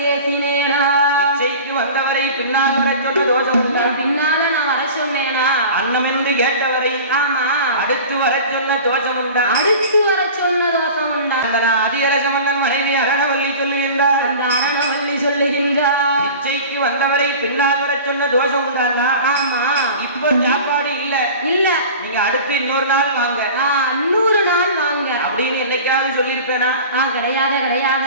ஏசினேனா இச்சைக்கு வந்தவரை பின்னால் வர சொன்ன தோஷம் உண்டா? பின்னால நான் வர சொன்னேனா? அன்னம் என்று கேட்டவரை ஆமா அடுத்து வர சொன்ன தோஷம் உண்டா? அடுத்து வர சொன்ன தோஷம் உண்டா? அந்த அதிகரச மன்னன் மனைவி அரணவல்லி சொல்லுகின்றார். அந்த அரணவல்லி சொல்லுகின்றார் இச்சைக்கு வந்தவரை பின்னால் வர சொன்ன தோஷம் உண்டானா? ஆமா இப்போ சாப்பாடு இல்ல இல்ல நீங்க அடுத்து இன்னொரு நாள் வாங்க, இன்னொரு நாள் வாங்க அப்படின்னு என்னைக்காவது சொல்லியிருப்பேனா? கிடையாது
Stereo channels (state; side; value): inverted; both; correlation -0.38